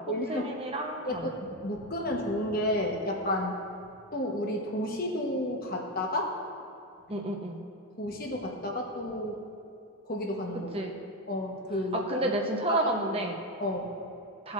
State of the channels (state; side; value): normal; both; correlation 0.12